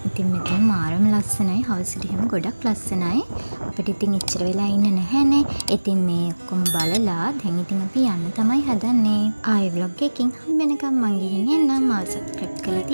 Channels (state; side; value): inverted; both; correlation -1.00